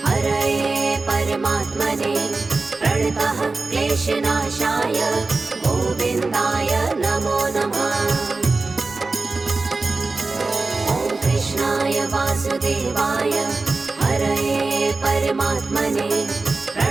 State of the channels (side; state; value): left; quieter; 3.7 dB